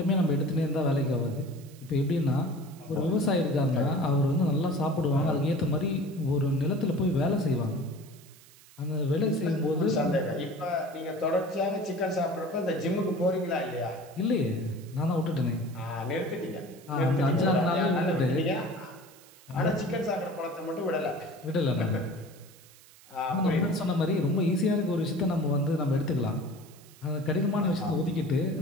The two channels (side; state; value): right; noise; hiss, 24 dB below the sound